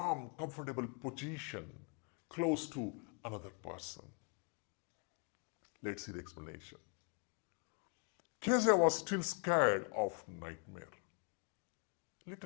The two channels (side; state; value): right; quieter; 35.2 dB